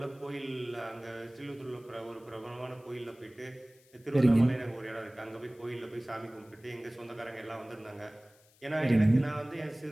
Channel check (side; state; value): left; noise; hiss, 29 dB below the sound